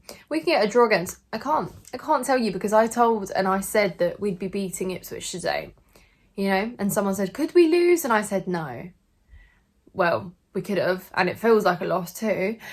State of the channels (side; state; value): both; identical; correlation 1.00